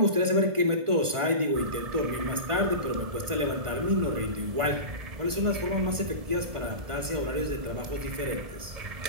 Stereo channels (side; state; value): left; late; 1.5 ms